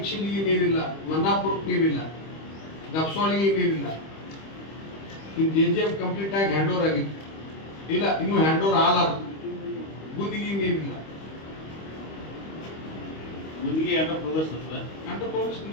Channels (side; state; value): right; late; 25 ms